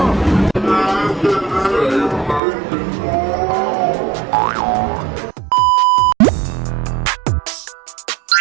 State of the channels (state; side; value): drops out; left; at 2.4 s